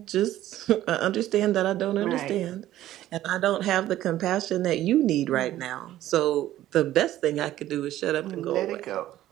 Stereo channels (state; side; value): quieter; left; 13.8 dB